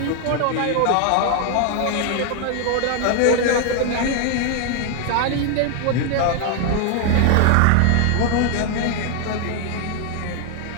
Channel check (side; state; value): both; different; correlation 0.00